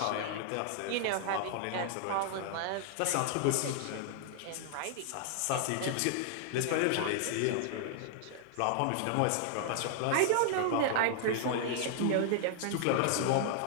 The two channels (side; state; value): both; different; correlation -0.01